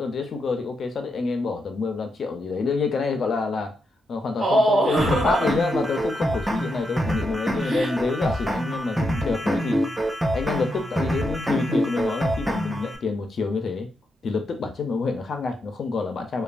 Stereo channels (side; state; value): both; normal; correlation 0.84